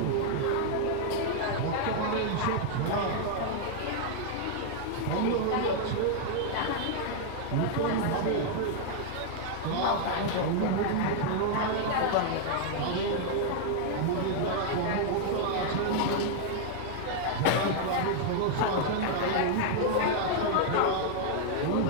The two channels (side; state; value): both; different; correlation -0.01